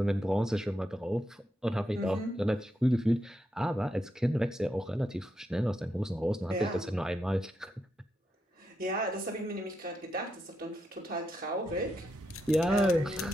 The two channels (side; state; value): both; normal; correlation 0.83